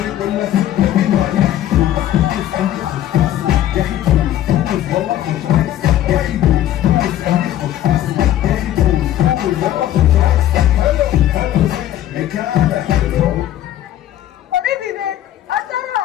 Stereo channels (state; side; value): quieter; right; 12.4 dB